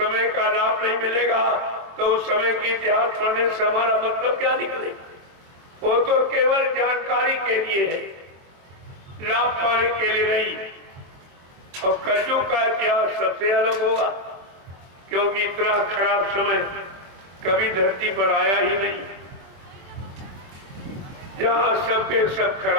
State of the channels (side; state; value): left; late; 23 ms